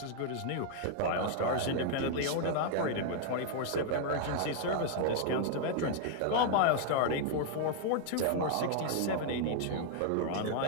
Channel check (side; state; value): both; different; correlation 0.00